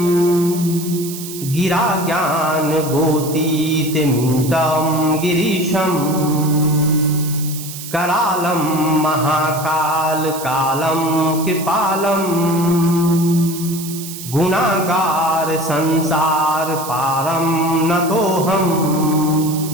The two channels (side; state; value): right; noise; hiss, 11 dB below the sound